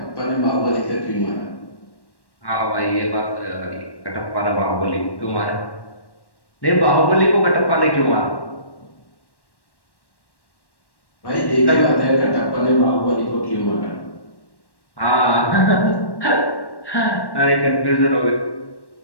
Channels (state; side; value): late; right; 1.1 ms